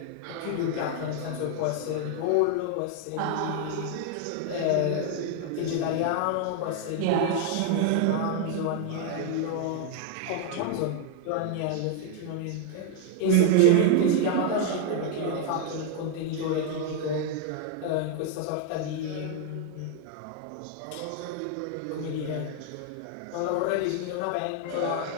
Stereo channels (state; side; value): different; both; correlation 0.00